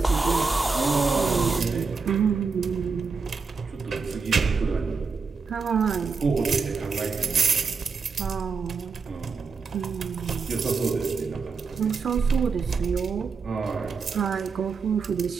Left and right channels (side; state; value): left; quieter; 4.9 dB